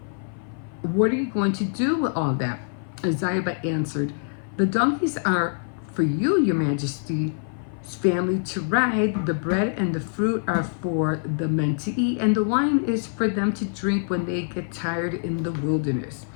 "What are you going to do with all that?" Ziba answered, "The donkeys are for you, your majesty, family to ride. The bread and the fruit are for the men to eat, and the wine is for them to drink when they get tired in the wilderness.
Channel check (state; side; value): silent; right; 56 dB below the other